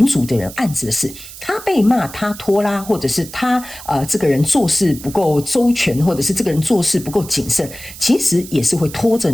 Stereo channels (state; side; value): noise; right; hiss, 15 dB below the sound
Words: 组的人案子的事，他被骂，他拖拉，或者是他这个人做事不够周全，或者是这个人做事不够谨慎，其实也是会拖着